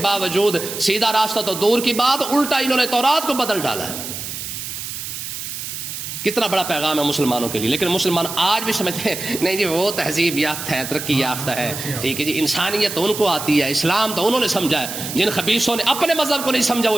باوجود سیدھا راستہ تو دور کی بات, الٹا انہوں نے تورات کو بدل ڈالا ہے. کتنا بڑا پیغام ہے مسلمانوں کے لیے. لیکن مسلمان آج بھی سمجھتے ہیں نہیں جی وہ تہذیب یافتہ ہے, ترقی یافتہ ہے, ٹھیک ہے جی, انسانیت تو ان کو آتی ہے, اسلام تو انہوں نے سمجھا ہے. جن خبیثوں نے اپنے مذہب کو نہیں سمجھا وہ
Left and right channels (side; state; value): right; noise; hiss, 7 dB below the sound